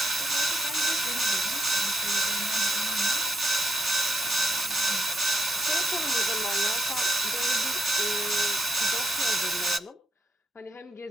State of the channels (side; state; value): both; normal; correlation 0.80